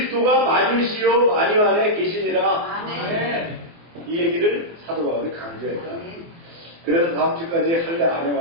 만유시요 만유 안에 계시니라. 이 얘기를 사도 바울이 강조했다. 그래서 다음 주까지 할례 안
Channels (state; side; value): late; left; 24 ms